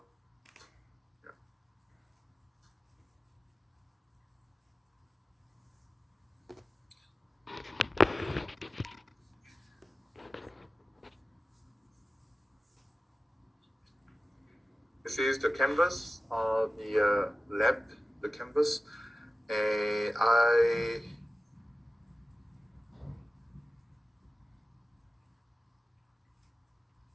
this is the canvas of the lab, the canvas, and I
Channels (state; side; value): normal; both; correlation 0.95